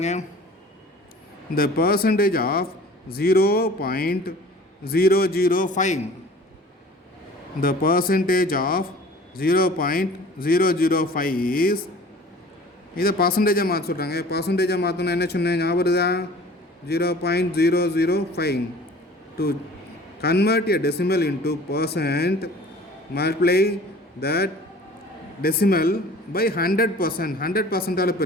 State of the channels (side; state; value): both; normal; correlation 0.46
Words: The percentage of 0.005. The percentage of 0.005 is, இதை பர்சன்டேஜாக மாற்ற சொல்கிறாங்க. பர்சன்டேஜாக மாற்றணும் என்ன சொன்னேன் ஞாபகம் இருக்குதா? 0.005. To convert a decimal into percent, multiply that decimal by 100%. 100%ஆல்